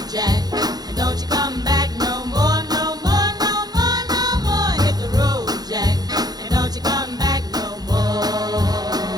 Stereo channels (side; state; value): left; late; 0.19 ms